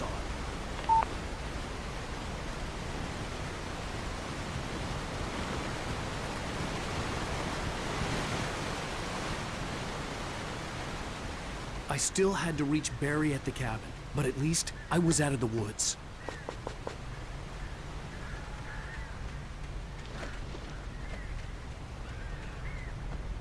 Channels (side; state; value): both; identical; correlation 1.00